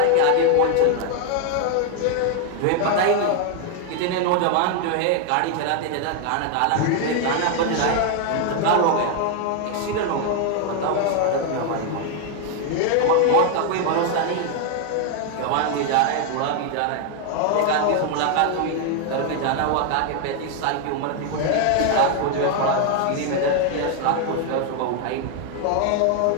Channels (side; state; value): both; different; correlation 0.00